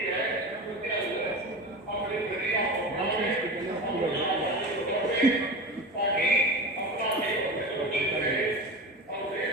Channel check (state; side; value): normal; both; correlation 0.28